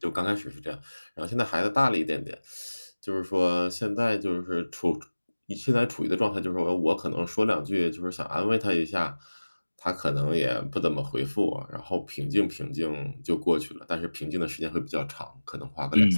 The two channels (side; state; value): both; inverted; correlation -1.00